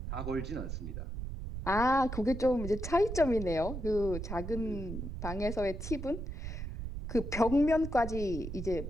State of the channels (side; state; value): right; noise; rumble, 6 dB below the sound